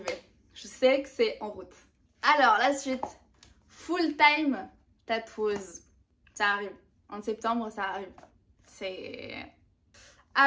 Je sais que c'est en route. Alors, la suite. full-time tatoueuse. Ça arrive. En septembre, ça arrive.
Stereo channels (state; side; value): identical; both; correlation 1.00